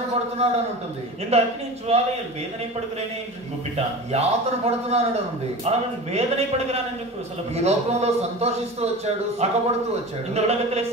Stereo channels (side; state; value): both; normal; correlation 0.33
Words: పడుతున్నాడు అని ఉంటుంది. இந்த அக்னி ஜுவாலையில் வேதனைப்படுகிறேனே என்று கூப்பிட்டான். యాతన పడుతున్నాడు అని ఉంది. அவன் வேதனைப்படுகிறான் என்று ఈ சொல்லப்படுகிறது. లోకంలో సంతోషిస్తూ వచ్చాడు, సుఖపడుతూ వచ్చాడు. இந்த ఉలగத்திலே